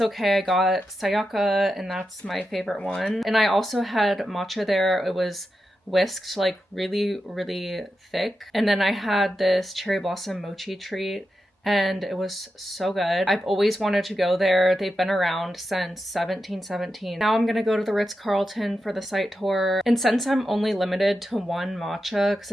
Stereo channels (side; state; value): both; normal; correlation 0.89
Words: okay. I got Sayaka, and that's my favorite one. And I also had matcha there. It was whisked like really, really thick. And then I had this cherry blossom mochi treat, and it was so good. I've always wanted to go there. They've been around since 1717. Now I'm gonna go to the Ritz Carlton for the site tour. And since I'm only limited to one matcha, because